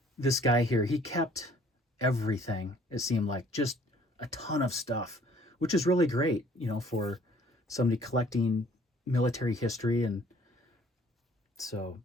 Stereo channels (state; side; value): normal; both; correlation 0.57